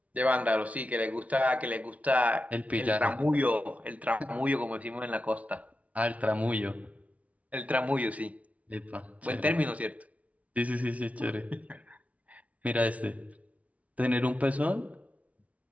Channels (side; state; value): left; late; 0.067 ms